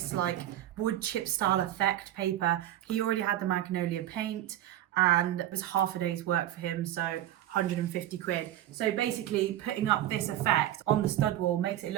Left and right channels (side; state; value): left; quieter; 12.8 dB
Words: like wood chip style effect paper. He already had the magnolia paint and it was half a day's work for him, so 150 quid. So basically putting up this effect on the stud wall makes it